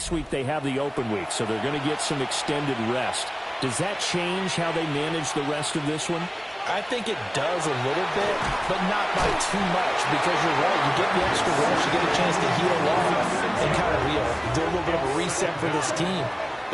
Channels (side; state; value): both; identical; correlation 1.00